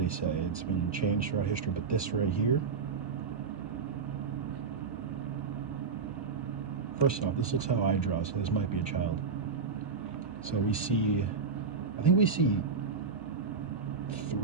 they say? It's been changed throughout history, but this right here. First off, this looks how I draw, so this might be a child. So we see, I think we see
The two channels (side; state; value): left; quieter; 5.3 dB